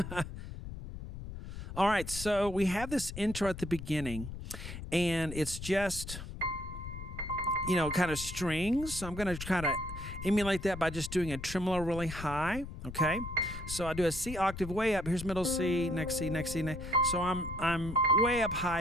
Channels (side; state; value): left; noise; rumble, 10 dB below the sound